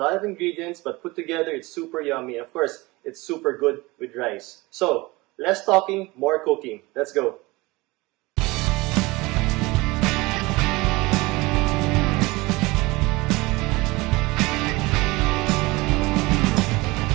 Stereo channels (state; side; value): quieter; left; 22.5 dB